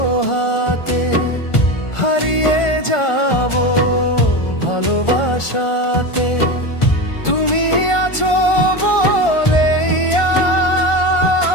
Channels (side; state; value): right; late; 1.4 ms